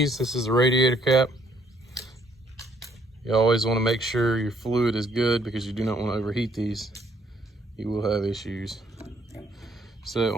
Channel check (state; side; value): normal; both; correlation 0.66